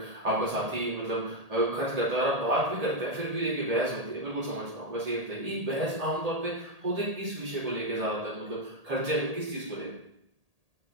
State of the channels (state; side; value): late; left; 1.8 ms